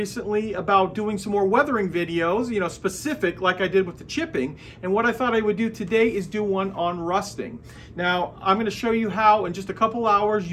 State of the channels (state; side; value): identical; both; correlation 1.00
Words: about doing some more weathering videos, specific like I did with the chipping. And what I thought I would do today is do one on rusting. Now, I'm going to show you how in just a couple hours